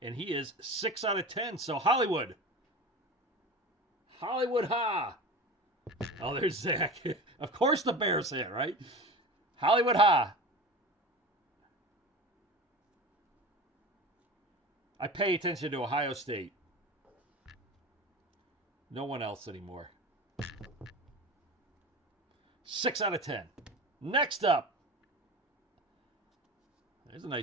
And he is 6 out of 10. So Hollywood. Hollywood ha. Oh, there's Zach. Of course the Bears hit, right? Hollywood ha. I pay attention to Ohio State. No one else anymore. 6 out of 10. Next up. There's a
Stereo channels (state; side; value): normal; both; correlation 0.32